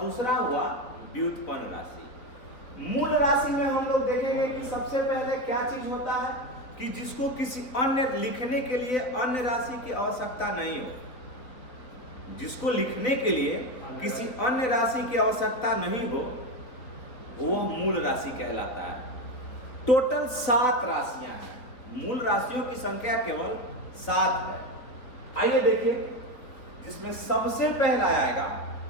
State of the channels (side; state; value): right; late; 4.1 ms